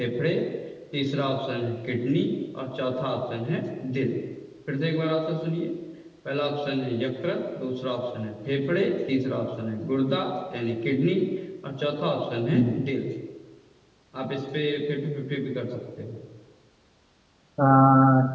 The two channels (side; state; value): both; identical; correlation 1.00